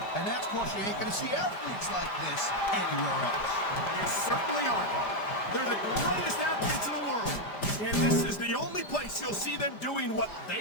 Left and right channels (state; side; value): late; right; 5.0 ms